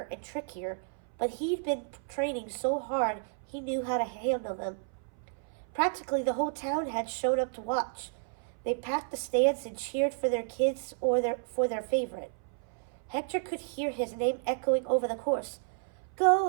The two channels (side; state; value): left; silent; 57 dB below the other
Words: and trickier, but he'd been training so hard he knew how to handle them. Practically the whole town had shown up to watch. They packed the stands and cheered for their kids or for their favorite. Hector could hear his name echoing over the course. "Go,